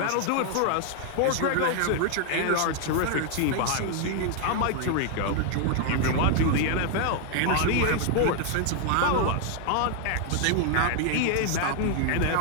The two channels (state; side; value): different; both; correlation 0.00